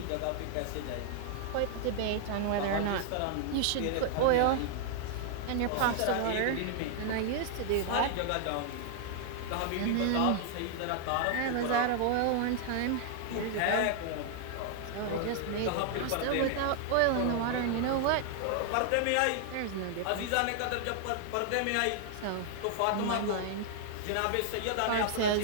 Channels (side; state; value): both; different; correlation -0.01